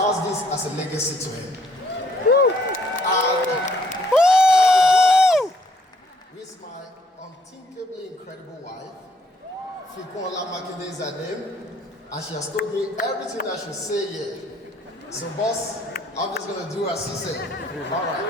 this as a legacy to him. And with my unthinkably incredible wife, Oluwasegun Makinde is her name, and she has told me everything I should say here. So boss, I'm just going to do as he said. All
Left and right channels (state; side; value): normal; both; correlation 0.65